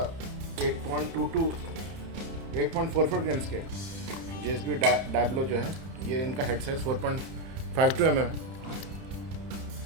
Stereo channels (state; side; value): late; left; 30 ms